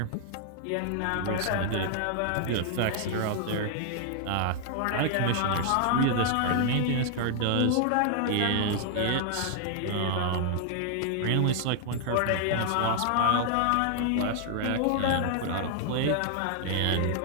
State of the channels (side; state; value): both; different; correlation 0.00